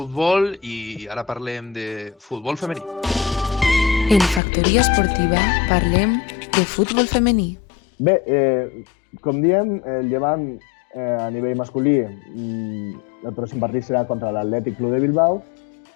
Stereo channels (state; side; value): drops out; right; at 4.4 s